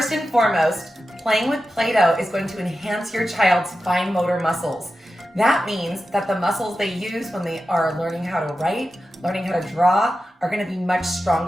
and foremost, playing with Play-Doh is going to enhance your child's fine motor muscles. That means that the muscles they use when they are learning how to write, learning how to draw, are going to be much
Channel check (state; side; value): normal; both; correlation 0.92